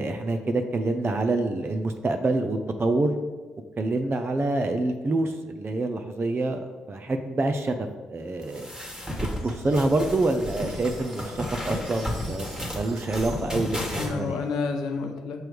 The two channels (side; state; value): both; normal; correlation 0.84